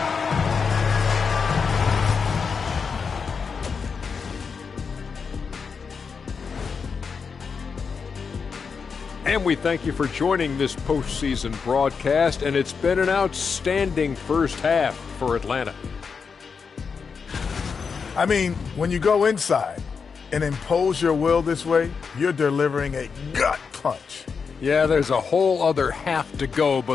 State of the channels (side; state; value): right; quieter; 5.6 dB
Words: And we thank you for joining this postseason broadcast, and it's been an outstanding first half for Atlanta. I mean, when you go inside and impose your will this way, you're delivering a gut punch. Yeah, there's a whole other half to go,